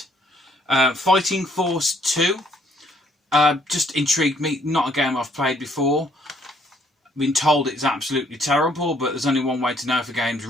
Fighting Force 2. Just intrigued me. Not a game I've played before. I've been told it's absolutely terrible, but there's only one way to know if a game's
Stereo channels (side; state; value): both; normal; correlation 0.65